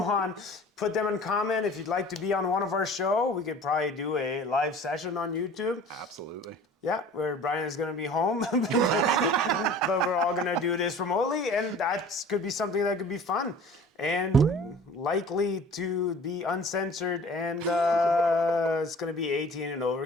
put them in comment. If you'd like to be on one of our show, we could probably do a live session on YouTube. Absolutely. Yeah, where Brian is going to be home, but we're all going to do this remotely, and that could be something that could be fun and likely to be uncensored, and it's going to be 18 and over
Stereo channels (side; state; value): both; normal; correlation 0.45